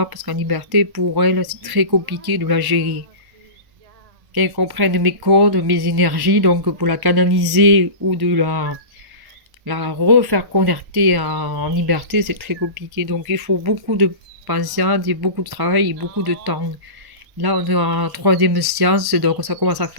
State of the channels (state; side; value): late; left; 1.1 ms